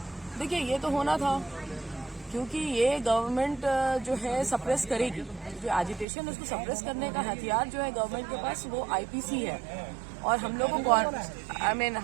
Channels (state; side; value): drops out; left; at 6.1 s